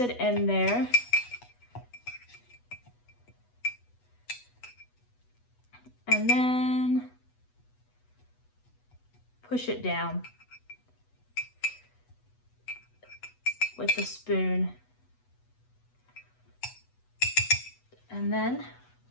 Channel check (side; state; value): right; late; 8.2 ms